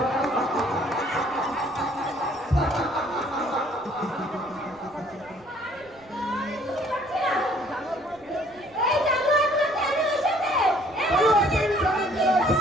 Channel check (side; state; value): right; noise; rumble, 29 dB below the sound